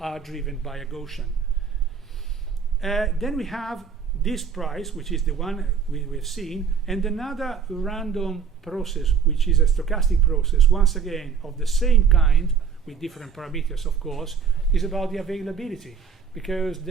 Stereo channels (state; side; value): quieter; left; 6.6 dB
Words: driven by a Gaussian. Then we have this price, which is the one we've seen, and another random process, which is a stochastic process, once again of the same kind, with different parameters of course, is about the availability, because